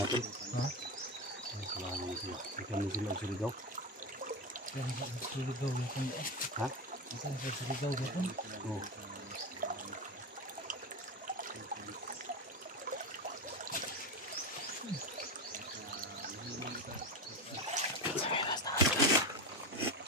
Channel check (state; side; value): normal; both; correlation 0.18